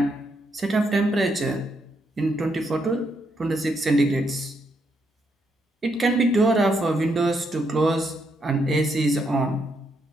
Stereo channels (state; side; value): normal; both; correlation 0.78